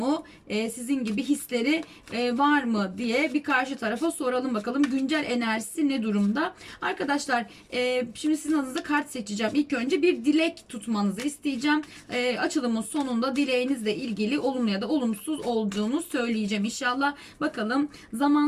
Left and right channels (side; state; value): both; identical; correlation 1.00